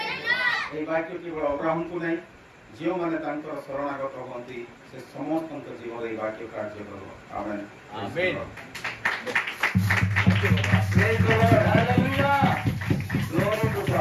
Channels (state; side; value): identical; both; correlation 1.00